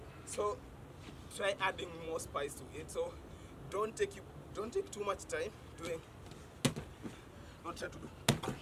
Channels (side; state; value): both; identical; correlation 1.00